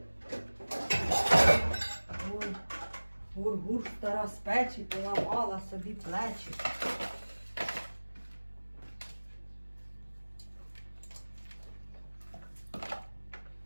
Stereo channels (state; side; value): inverted; both; correlation -1.00